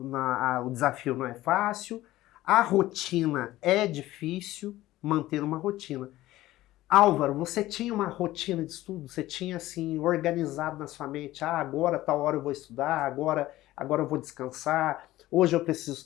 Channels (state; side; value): quieter; right; 16.1 dB